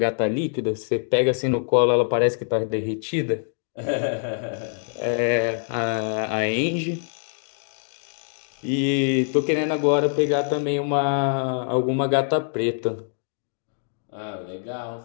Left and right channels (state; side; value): silent; right; 62 dB below the other